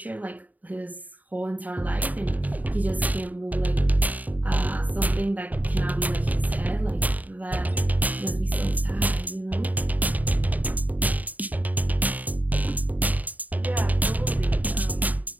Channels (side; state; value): left; late; 0.077 ms